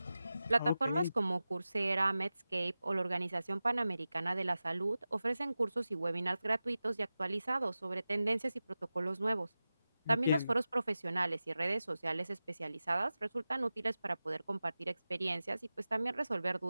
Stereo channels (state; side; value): inverted; both; correlation -0.94